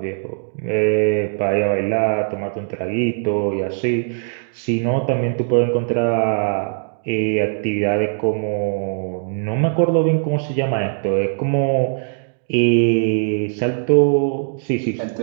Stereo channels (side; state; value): left; silent; digital silence